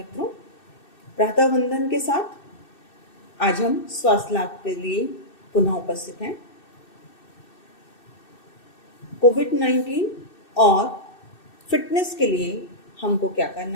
प्रातः वंदन के साथ आज हम स्वास्थ्य लाभ के लिए पुनः उपस्थित हैं। कोविड-19 और फिटनेस के लिए हमको क्या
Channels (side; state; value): right; late; 2.6 ms